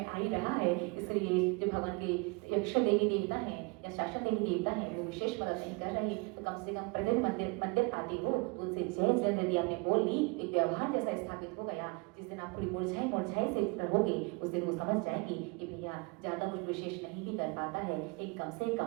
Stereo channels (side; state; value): left; quieter; 28.9 dB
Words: आ ही रहा है। इसलिए जो भगवान के यक्ष देवी देवता हैं या शासन देवी देवता हैं, वो विशेष मदद नहीं कर रहे, तो कम से कम प्रतिदिन मंदिर आते हो तो उनसे जय जिनेंद्र यदि आपने बोल ली, एक व्यवहार जैसा स्थापित हो गया। जिस दिन आप थोड़ी मुरझाई से रहोगे, उस दिन वो समझ जाएगी कि भैया ज्यादा कुछ विशेष नहीं भी कर पाता है, एक कम से